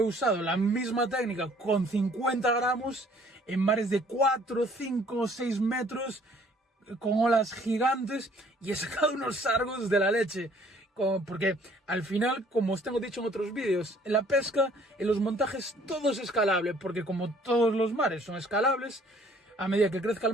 la misma técnica con 50 gramos en mares de 4, 5, 6 metros, con olas gigantes, y he sacado unos sargos de la leche. Porque al final, como os tengo dicho en otros vídeos, en la pesca, en los montajes, todo es escalable, porque como todos los mares son escalables, a medida que crezca el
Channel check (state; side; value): normal; both; correlation 0.58